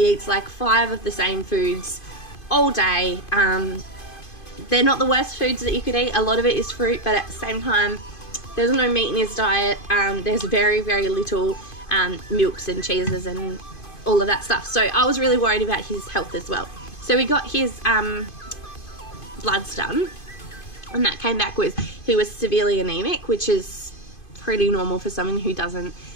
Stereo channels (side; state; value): right; late; 2.5 ms